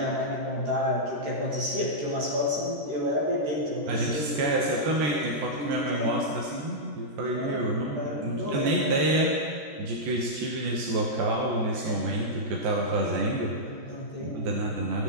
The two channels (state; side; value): late; left; 13 ms